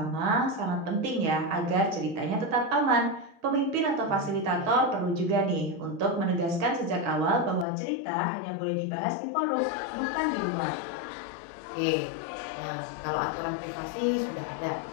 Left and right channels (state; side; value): drops out; right; at 7.7 s